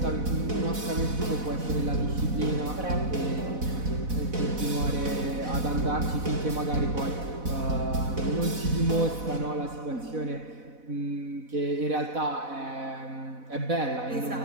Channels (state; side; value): late; left; 4.1 ms